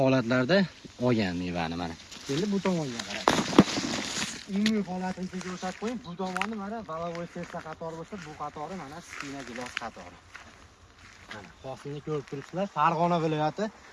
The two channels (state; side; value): identical; both; correlation 1.00